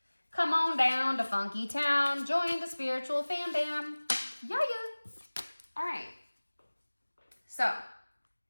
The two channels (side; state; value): both; inverted; correlation -1.00